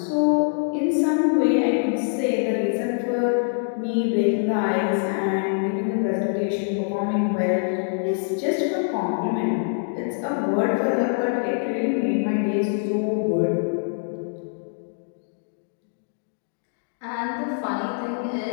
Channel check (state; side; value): silent; right; digital silence